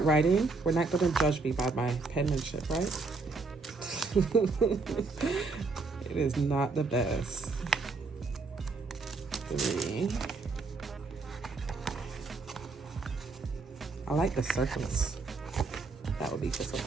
writing, we're not going to judge me by my penmanship, right? It is not the best. 3. I like the circles. That would be for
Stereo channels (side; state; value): left; quieter; 4.0 dB